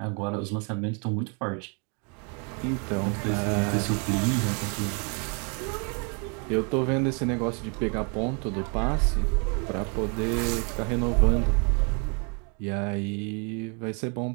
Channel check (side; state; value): left; quieter; 36.3 dB